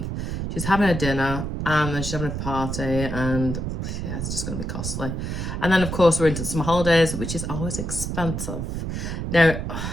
She's having a dinner and then she's having a party, and yeah, it's just going to be costly. And then, of course, we're into some holidays, which is always expensive. Now,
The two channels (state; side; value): noise; right; rumble, 4 dB below the sound